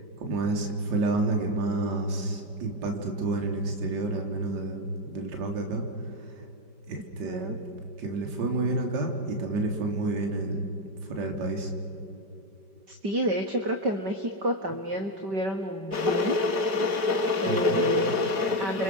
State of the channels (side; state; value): left; late; 5.1 ms